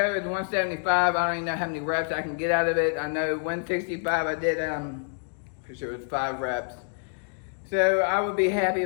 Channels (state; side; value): silent; right; 55 dB below the other